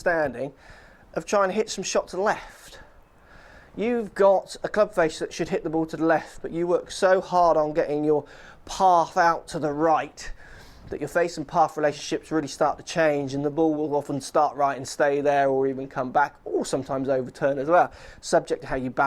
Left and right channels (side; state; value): both; identical; correlation 1.00